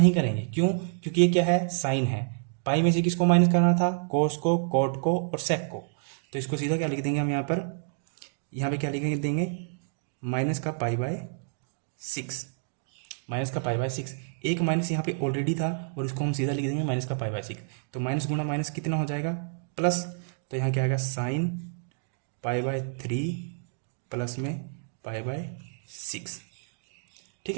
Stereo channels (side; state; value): left; silent; digital silence